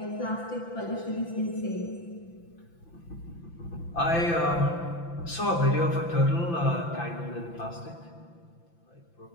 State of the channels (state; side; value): late; right; 5.9 ms